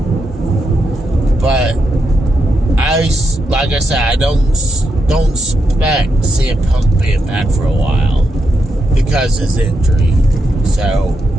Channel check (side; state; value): both; normal; correlation 0.83